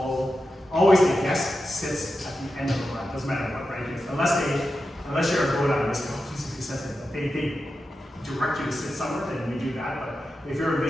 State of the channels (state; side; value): normal; both; correlation 0.90